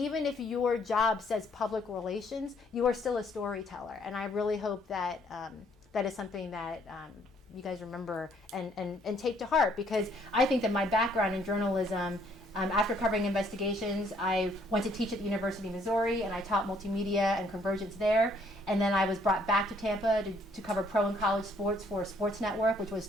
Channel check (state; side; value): normal; both; correlation 0.65